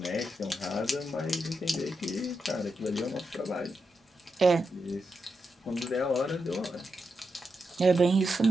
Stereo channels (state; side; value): normal; both; correlation 0.86